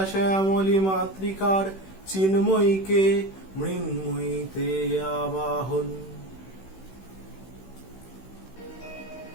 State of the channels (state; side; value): late; right; 16 ms